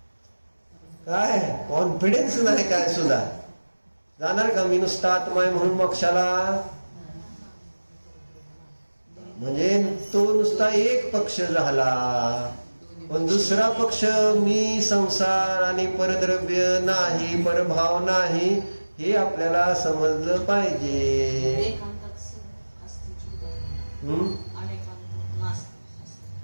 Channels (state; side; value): inverted; both; correlation -1.00